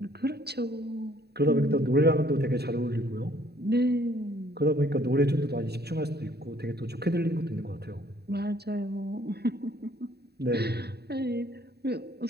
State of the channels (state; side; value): late; left; 0.47 ms